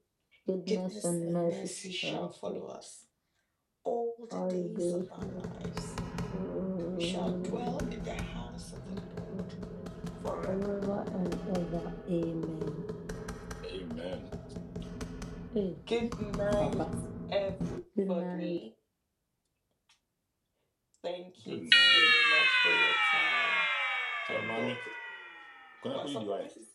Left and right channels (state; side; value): identical; both; correlation 1.00